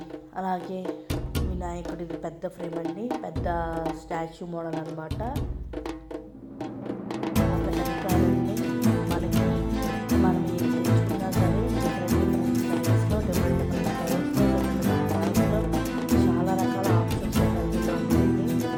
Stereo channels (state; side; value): identical; both; correlation 1.00